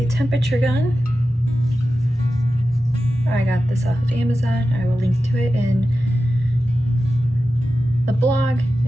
temperature gun. I got this off of Amazon. I will link to it in the blog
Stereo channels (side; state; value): both; normal; correlation 0.93